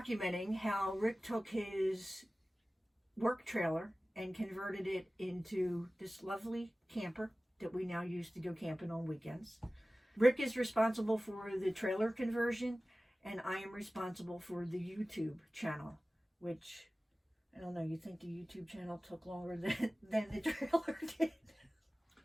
how Rick took his work trailer and converted it into this lovely camper that we now use to go camping on weekends. Rick is responsible for the trailer conversion, and I am responsible for the YouTube channel, which, I don't know, you think the YouTube channel took longer than the trailer did?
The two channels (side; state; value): both; normal; correlation 0.97